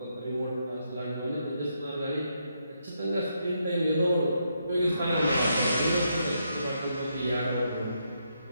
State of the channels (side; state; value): both; inverted; correlation -0.79